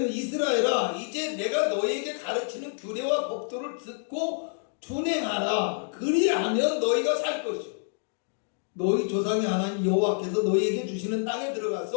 이스라엘아 이제 내가 너희에게 가르치는 규례와 법도를 듣고 준행하라. 그리하면 너희가 살 것이요 너희 조상의 하나님 여호와께서 너희에게 주시는 땅에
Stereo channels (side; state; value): right; silent; 60 dB below the other